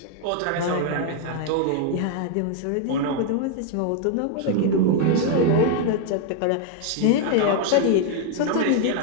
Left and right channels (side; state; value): both; different; correlation 0.00